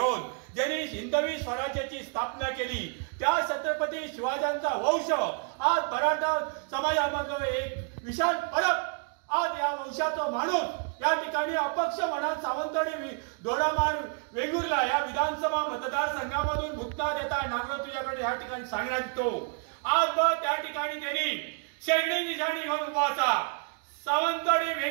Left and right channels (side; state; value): left; quieter; 39.2 dB